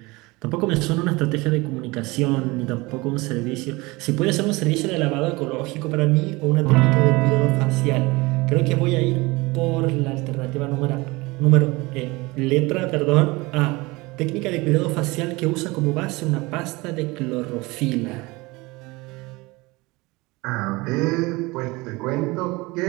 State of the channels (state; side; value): quieter; left; 23.1 dB